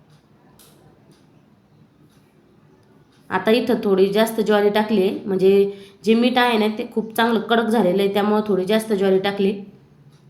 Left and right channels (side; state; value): both; identical; correlation 1.00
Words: आता इथं थोडी जास्त ज्वारी टाकली आहे म्हणजे जे मीठ आहे ना ते खूप चांगलं कडक झालेलं आहे त्यामुळे थोडी जास्त ज्वारी टाकली.